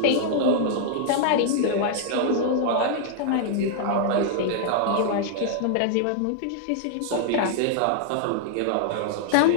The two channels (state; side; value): different; both; correlation -0.01